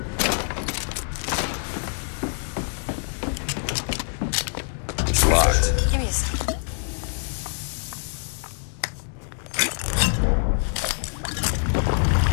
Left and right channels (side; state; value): right; silent; 59 dB below the other